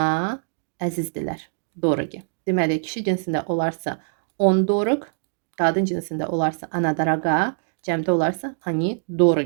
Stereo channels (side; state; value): left; silent; digital silence